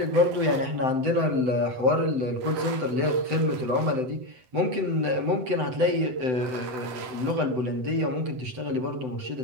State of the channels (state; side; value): late; left; 7.8 ms